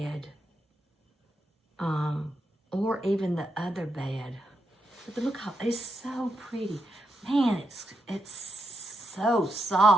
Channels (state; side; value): normal; both; correlation 0.84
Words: Or even the other bed. But look how, it's so pretty. Man, it's so